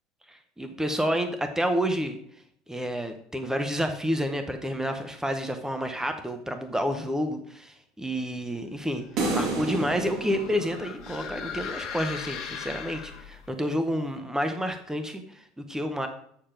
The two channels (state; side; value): normal; both; correlation 0.76